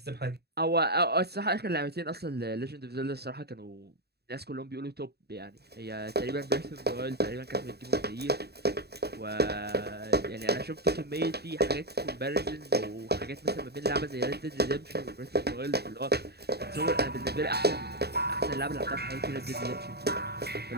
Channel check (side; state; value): left; late; 0.47 ms